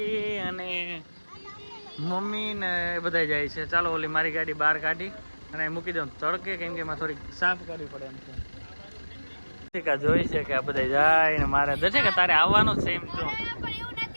અને મમ્મી ને બધા જાય છે. ચાલો ઓલી મારી ગાડી બહાર કાઢી અને મૂકી દઉં તડકે, કેમ કે એમાં થોડીક સાફ કરવી પડે એમ છે. દર્શિકા જોઈ છે કે આ બધા જાય ને મારે દર્શિકા તારે આવવાનું છે એમ તો.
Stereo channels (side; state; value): both; inverted; correlation -1.00